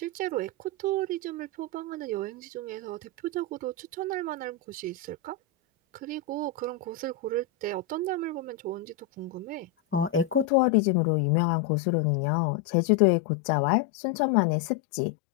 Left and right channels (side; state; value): right; drops out; at 10.5 s